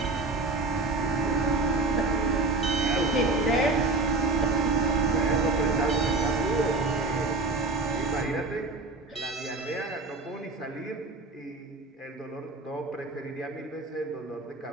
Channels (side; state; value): left; quieter; 3.3 dB